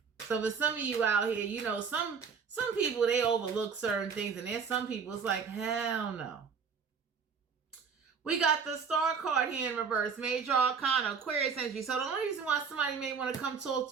So for some of you out here, some people, they overlook certain things, and there's some people, it's like, hell no. We got the Star card here in reverse, Major Arcana, Aquarius energy. So the only reason why somebody may want to come talk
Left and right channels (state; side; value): quieter; left; 6.1 dB